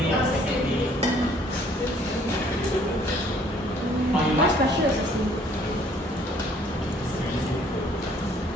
or second day? Or you like? Special.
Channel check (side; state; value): both; normal; correlation 0.60